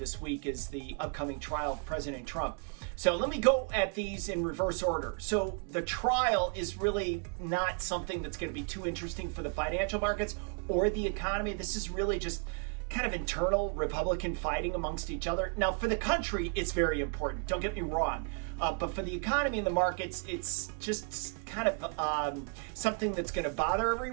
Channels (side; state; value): left; quieter; 37.9 dB